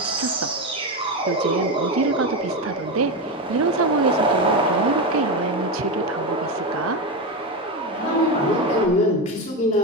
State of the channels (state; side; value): normal; both; correlation 0.14